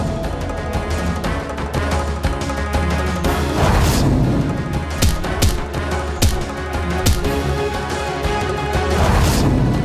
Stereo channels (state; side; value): identical; both; correlation 1.00